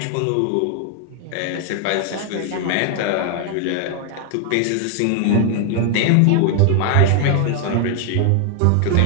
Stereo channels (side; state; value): both; different; correlation 0.00